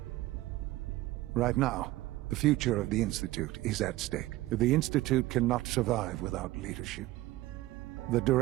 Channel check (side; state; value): left; quieter; 17.4 dB